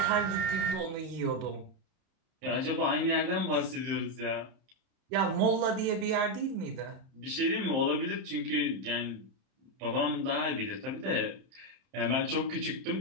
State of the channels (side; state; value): left; late; 30 ms